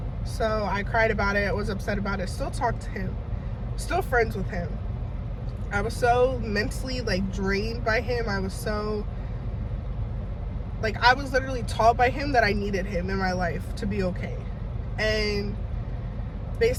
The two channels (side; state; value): both; identical; correlation 1.00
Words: So I cried about it. I was upset about it. Still talked to him. Still friends with him. I was so mentally like drained by him. I was so like, I was literally taught by him that I needed him in my life to be okay. And